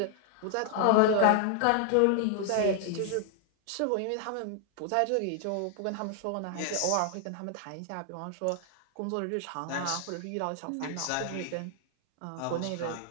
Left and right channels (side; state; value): both; different; correlation 0.00